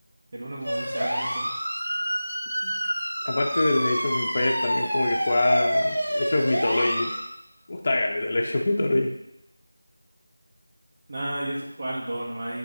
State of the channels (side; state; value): both; inverted; correlation -0.97